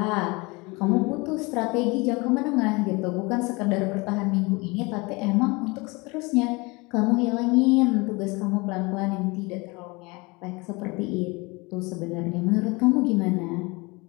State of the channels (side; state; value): right; quieter; 26.0 dB